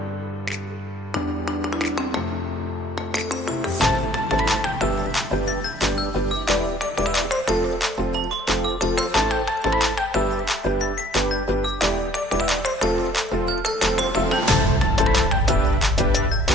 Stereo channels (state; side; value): normal; both; correlation 0.59